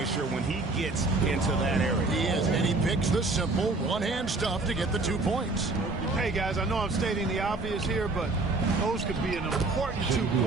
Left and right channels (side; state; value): left; quieter; 3.3 dB